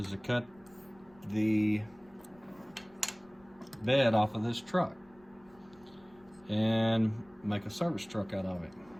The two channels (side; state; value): left; noise; rumble, 28 dB below the sound